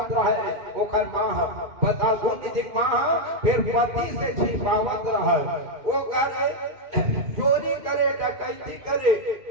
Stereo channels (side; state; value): left; late; 2.5 ms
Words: रहे ओकर माँ बताओ गुण निधिक माँ फिर पति से छिपावत रहे वो करे चोरी करे डकैती करे